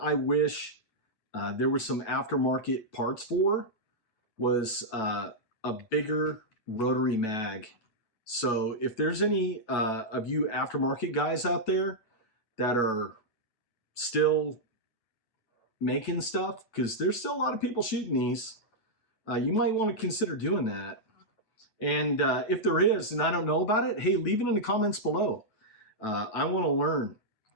wish there were some aftermarket parts for was a bigger rotary mag. So if there's any of you aftermarket guys out there that are still making stuff, because there's still a lot of people shooting these, you might want to consider doing that. And if there is, and I don't know about it, hey, leave it in the comments below. I want to learn.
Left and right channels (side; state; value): right; late; 9.1 ms